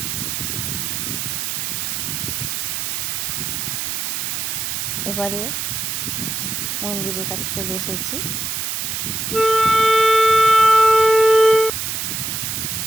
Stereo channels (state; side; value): noise; right; hiss, 2 dB below the sound